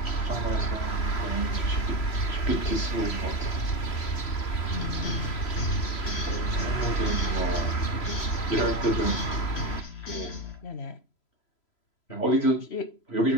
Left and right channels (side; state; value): right; late; 3.0 ms